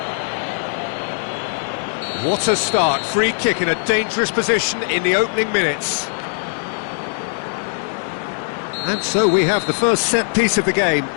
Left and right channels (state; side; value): silent; right; digital silence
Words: What a start. Free kick in a dangerous position in the opening minutes. And so we have the first set piece of the game.